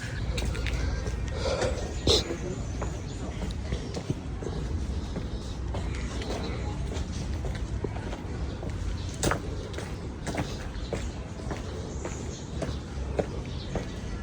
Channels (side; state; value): both; identical; correlation 1.00